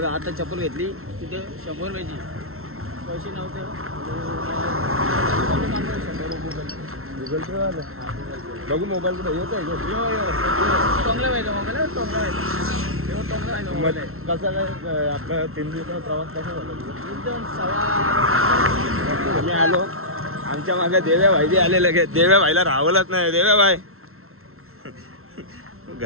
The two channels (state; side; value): late; left; 0.62 ms